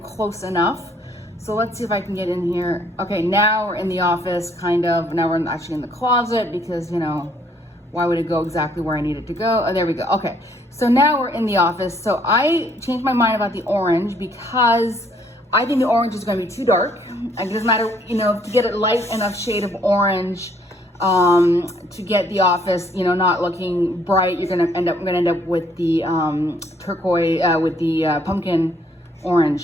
close enough. So let's see if I can get in here. Okay, now we're in the office, kind of. Now we're actually in the closet because, you know, why would it go exactly where I need it to go? Oh, there we go. Okay, so now we're in the office. So I changed my mind about the orange because I think the orange is going to be too dark. It doesn't matter, you know, to get a light enough shade of orange to get the office, you know, not looking bright. We're gonna end up with the turquoise, with the pumpkin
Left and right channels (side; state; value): both; normal; correlation 0.65